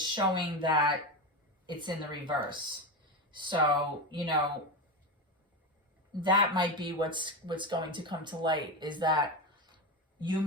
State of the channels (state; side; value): normal; both; correlation 0.17